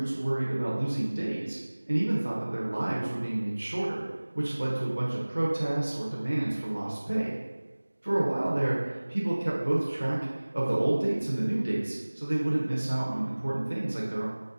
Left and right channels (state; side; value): inverted; both; correlation -1.00